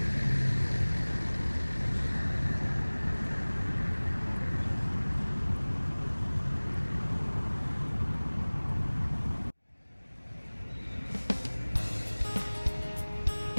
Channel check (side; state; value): both; inverted; correlation -1.00